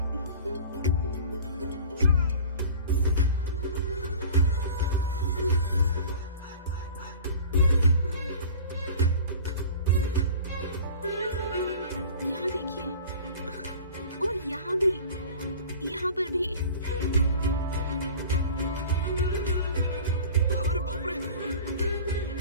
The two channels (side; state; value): both; inverted; correlation -0.40